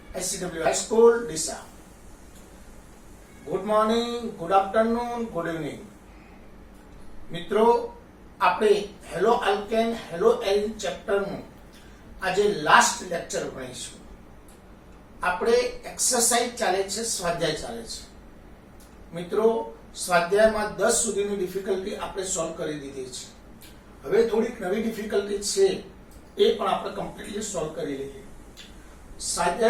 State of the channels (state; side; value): identical; both; correlation 1.00